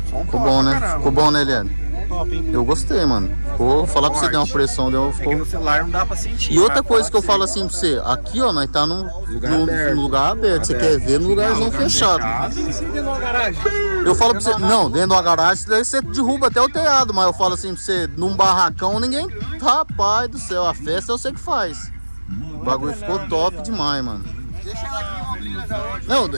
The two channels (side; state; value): both; inverted; correlation -1.00